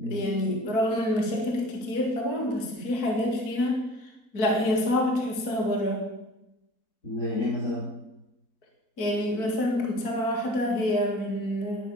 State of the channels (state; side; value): late; right; 4.5 ms